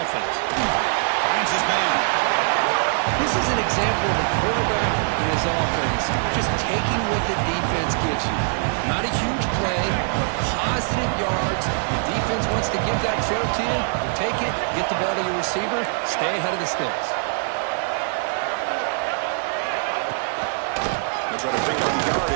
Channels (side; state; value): left; silent; 59 dB below the other